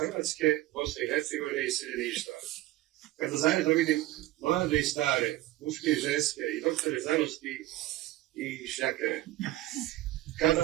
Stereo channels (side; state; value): left; quieter; 16.1 dB